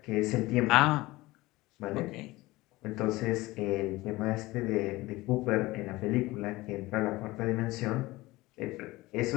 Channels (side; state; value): right; quieter; 19.8 dB